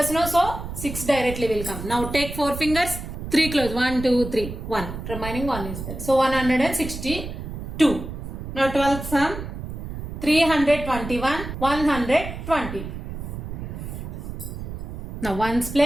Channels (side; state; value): right; noise; rumble, 8 dB below the sound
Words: no? So 6 directly will come. Now take 4 fingers. 3 close. 1, 2, 3. 1. Remaining 1 is there. So 162. Now 12th sum. 321. 120. Now ones